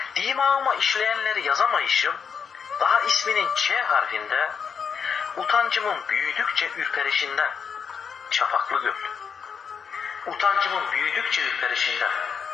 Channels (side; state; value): right; quieter; 6.6 dB